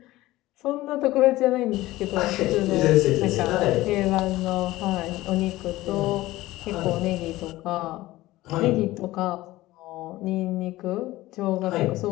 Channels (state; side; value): quieter; right; 17.5 dB